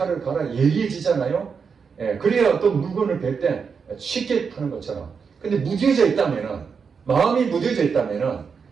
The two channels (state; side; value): quieter; left; 5.9 dB